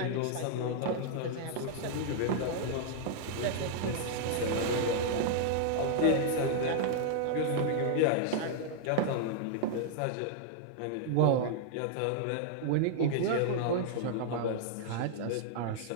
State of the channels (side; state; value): both; different; correlation -0.01